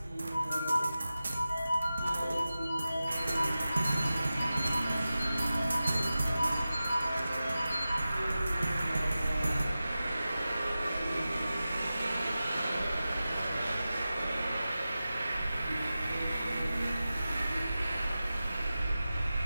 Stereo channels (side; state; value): both; inverted; correlation -0.94